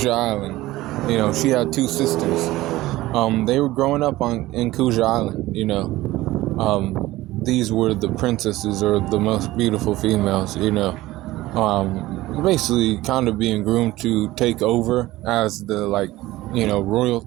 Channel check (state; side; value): quieter; left; 17.4 dB